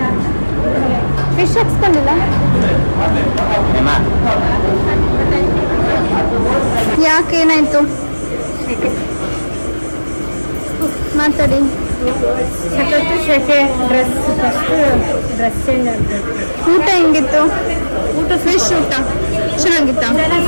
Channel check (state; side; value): inverted; both; correlation -1.00